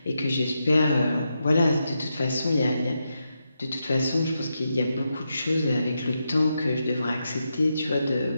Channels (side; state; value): both; inverted; correlation -0.85